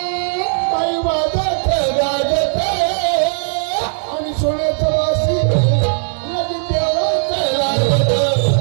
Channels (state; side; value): silent; left; digital silence